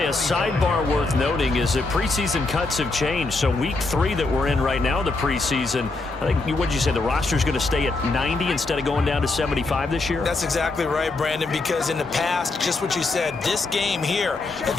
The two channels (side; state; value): right; quieter; 3.4 dB